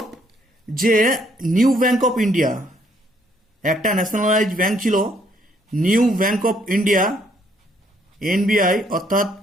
যে নিউ ব্যাংক অফ ইন্ডিয়া, একটা ন্যাশনালাইজ ব্যাংক ছিল, new bank of India, NBI, অর্থাৎ,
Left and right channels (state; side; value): normal; both; correlation 0.68